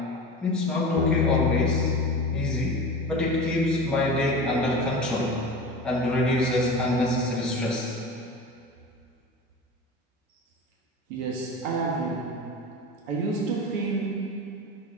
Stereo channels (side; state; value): both; normal; correlation 0.31